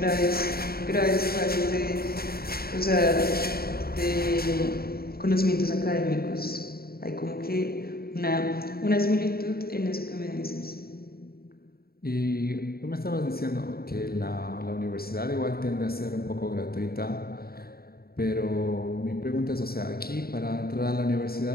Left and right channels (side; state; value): right; late; 0.44 ms